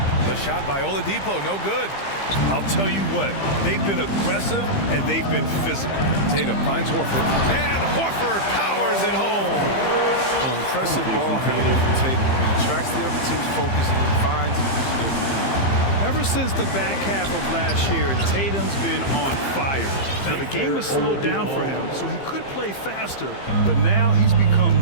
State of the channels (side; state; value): right; late; 15 ms